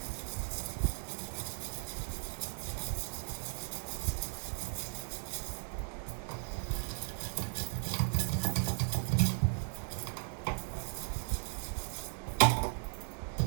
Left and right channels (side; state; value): left; silent; 53 dB below the other